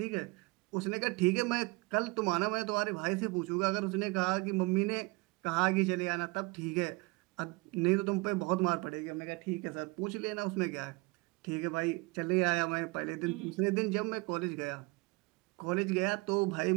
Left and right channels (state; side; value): quieter; left; 25.5 dB